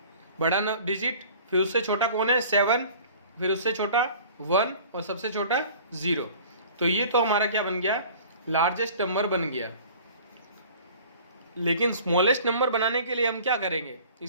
बड़ा डिजिट, फिर उससे छोटा कौन है 7, फिर उससे छोटा 1 और सबसे छोटा 0। तो ये तो हमारा क्या बन गया, लार्जेस्ट नंबर बन गया। लेकिन स्मॉलेस्ट नंबर बनाने के लिए हम क्या करेंगे,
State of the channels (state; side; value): inverted; both; correlation -0.47